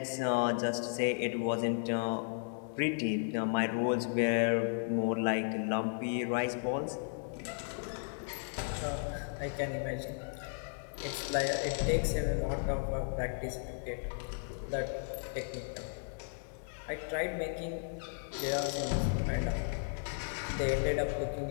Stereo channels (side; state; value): right; silent; digital silence